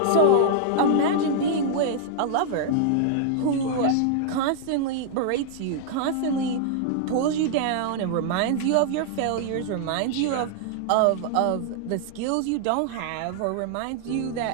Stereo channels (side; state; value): both; different; correlation -0.01